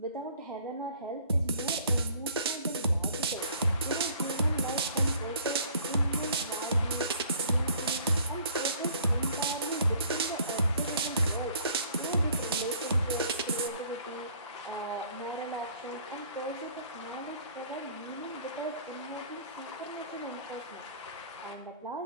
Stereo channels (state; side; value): inverted; both; correlation -0.54